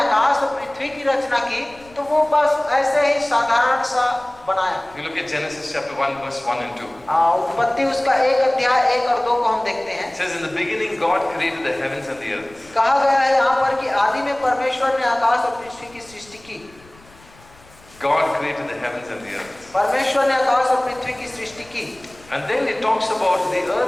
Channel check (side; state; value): left; noise; rumble, 26 dB below the sound